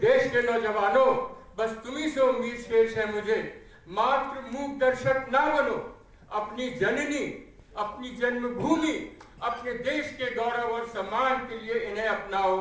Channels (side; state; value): both; identical; correlation 1.00